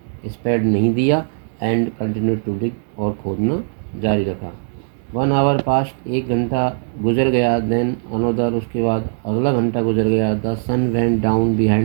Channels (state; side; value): silent; left; 66 dB below the other